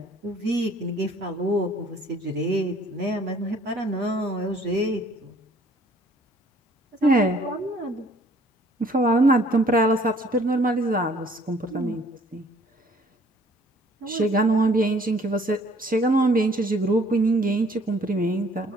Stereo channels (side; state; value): both; normal; correlation 0.58